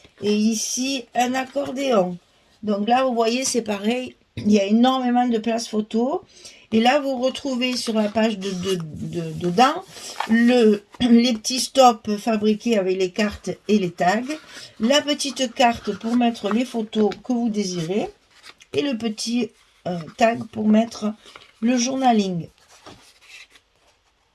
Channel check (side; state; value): both; identical; correlation 1.00